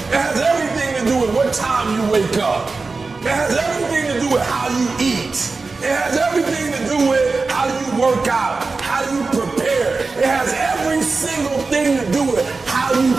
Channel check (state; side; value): quieter; left; 4.0 dB